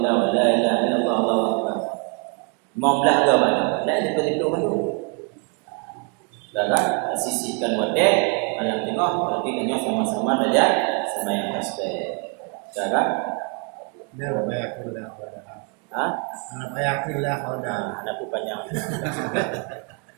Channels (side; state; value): left; quieter; 35.0 dB